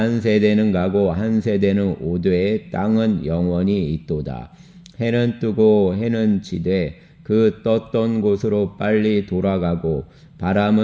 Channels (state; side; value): identical; both; correlation 1.00